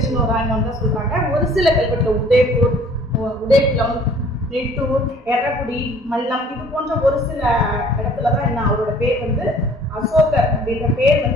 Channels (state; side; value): normal; both; correlation 0.54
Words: ராயனோன்னு தான் சொல்றாங்க. ஒரு சில கல்வெட்டுல உதய்பூர், உதய்குளம், நெட்டூர், எர்ரகுடி, மல்லம் இது போன்ற ஒரு சில இடத்துலதான் என்ன அவரோட பேர் வந்து அசோகர் அப்படின்ற பேர்